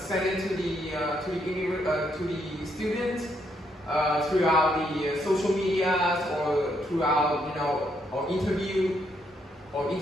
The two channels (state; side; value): normal; both; correlation 0.74